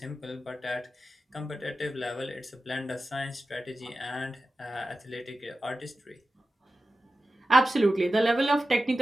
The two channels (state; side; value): normal; both; correlation 0.93